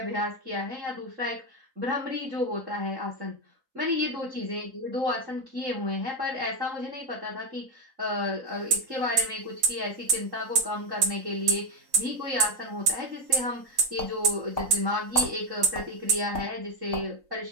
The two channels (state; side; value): late; left; 3.9 ms